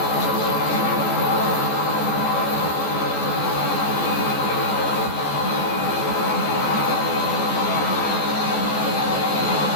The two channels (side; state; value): right; late; 14 ms